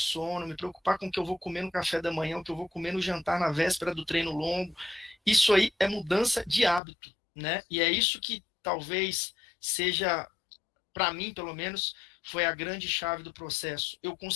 me preocupar com o que eu vou comer no café da manhã, o que eu vou comer no jantar na véspera do treino longo. Isso aí é mudança de hábito, né? E é isso que talvez seja, para mim, pelo menos, foi a grande chave do processo. Eu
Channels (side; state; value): right; drops out; at 6.8 s